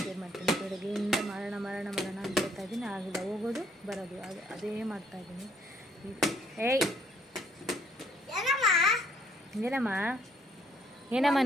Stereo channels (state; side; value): normal; both; correlation 0.66